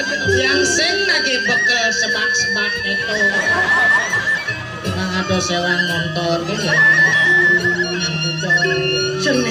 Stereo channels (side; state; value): both; identical; correlation 1.00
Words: lagi bekel sebak-sebak itu. Bang ada sewang motor gitu.